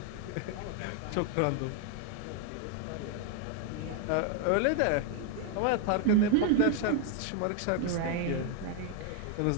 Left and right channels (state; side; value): different; both; correlation 0.01